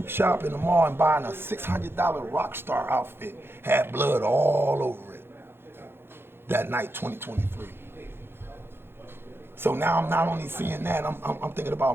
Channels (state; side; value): late; left; 0.11 ms